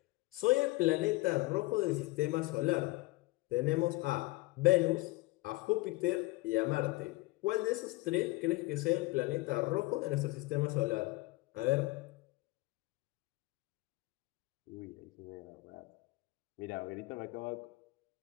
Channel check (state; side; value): quieter; right; 21.4 dB